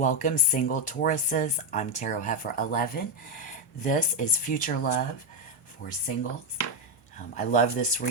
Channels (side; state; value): both; normal; correlation 0.06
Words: single Tauruses. I'm Tarot Heifer 11. This is Future Love for singles. I love this